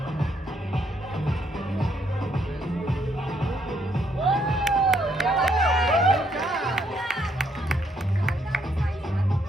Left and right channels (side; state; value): both; normal; correlation 0.72